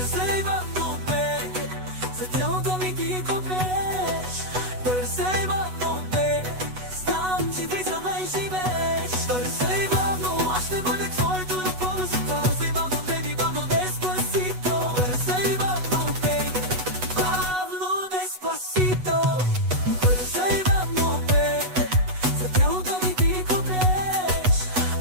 бавно, бейби, за тялото ми ти копнеш. Пърсей бавно, бейби, знам, че ти за мен живееш. Пърсей бавно, аз ще бъде твоето любовно си. Пърсей бавно, бейби, Пабло Деспасито. Пърсей бавно, бейби, Пабло Деспасито. Пърсей бавно, бейби, за тялото ми ти копнеш.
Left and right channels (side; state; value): left; late; 8.1 ms